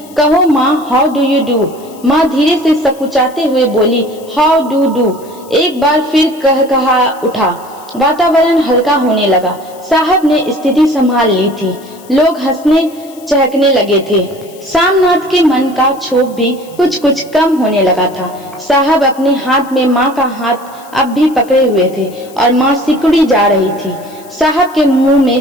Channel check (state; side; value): noise; left; hiss, 23 dB below the sound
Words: कहो माँ, हाउ डू यू डू। माँ धीरे से सकुचाते हुए बोली, हाउ डू डू। एक बार फिर कहा उठा। वातावरण हल्का होने लगा। साहब ने स्थिति संभाल ली थी। लोग हंसने चहकने लगे थे। सामनाथ के मन का क्षोभ भी कुछ कुछ कम होने लगा था। साहब अपने हाथ में माँ का हाथ अब भी पकड़े हुए थे और माँ सिकुड़ी जा रही थी। साहब के मुंह में